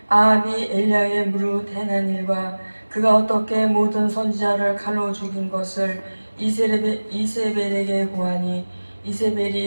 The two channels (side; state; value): both; inverted; correlation -1.00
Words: 아합이 엘리야의 무릇 행한 일과 그가 어떻게 모든 선지자를 칼로 죽인 것을 이세벨에게 고하니